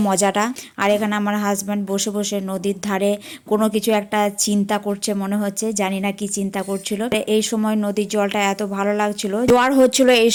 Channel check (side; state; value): both; identical; correlation 1.00